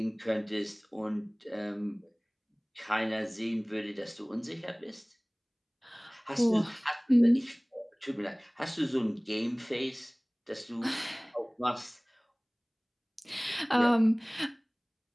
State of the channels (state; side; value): identical; both; correlation 1.00